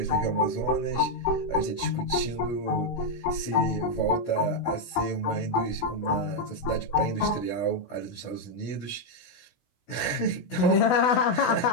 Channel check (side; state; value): right; late; 16 ms